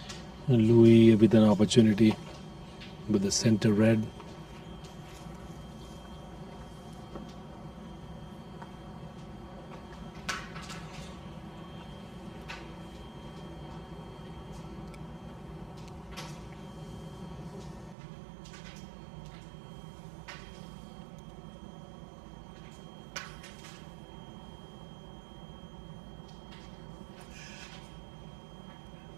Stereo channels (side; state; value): left; drops out; at 17.9 s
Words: And Louis with an opportunity with the center red.